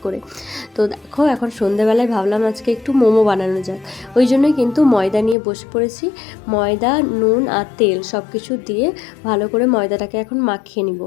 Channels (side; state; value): right; drops out; at 5.4 s